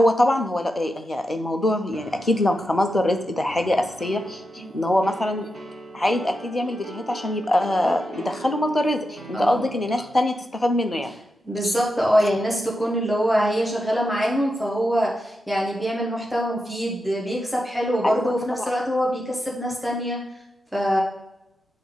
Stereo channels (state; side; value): normal; both; correlation 0.88